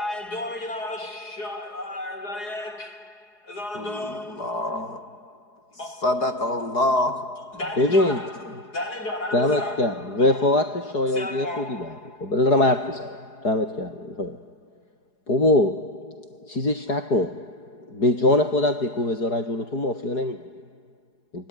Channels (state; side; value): late; right; 4.8 ms